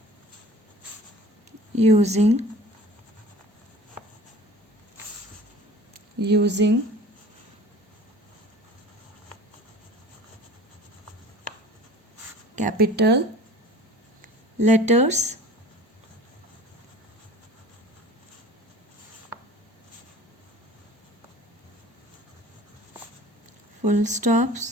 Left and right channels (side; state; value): both; normal; correlation 0.43